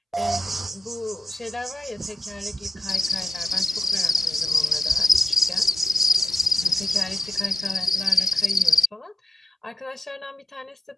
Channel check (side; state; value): both; normal; correlation 0.93